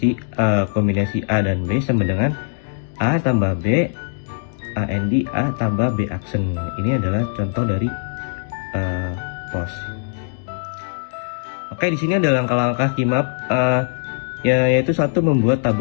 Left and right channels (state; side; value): silent; right; digital silence